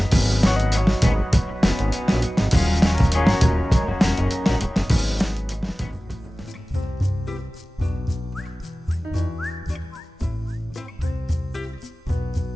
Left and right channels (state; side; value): normal; both; correlation 0.97